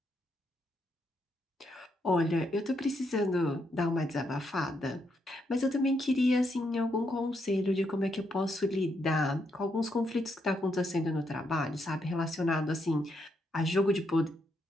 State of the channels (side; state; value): both; normal; correlation 0.78